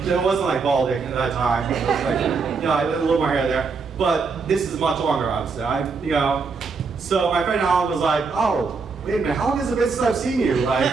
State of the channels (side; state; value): left; quieter; 4.8 dB